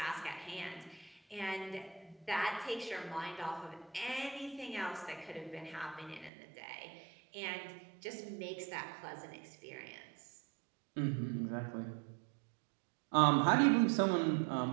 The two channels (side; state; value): left; drops out; at 6.3 s